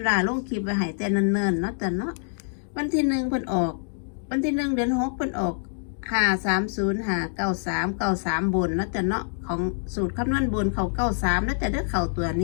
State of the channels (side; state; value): right; silent; digital silence